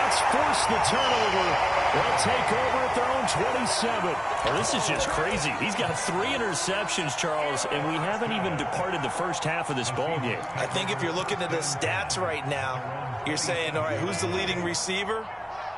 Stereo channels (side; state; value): both; identical; correlation 1.00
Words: force the turnover. They'll take over at their own 27. Well, this is just crazy. He's got 3 interceptions, Charles, and we haven't even departed the first half of this ball game. I think if you're looking at the stats right now, you're saying, all right, who's the leading receiver?